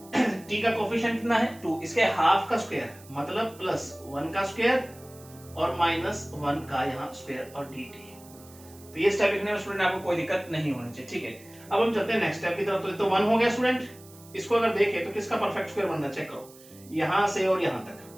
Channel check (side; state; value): right; noise; hiss, 22 dB below the sound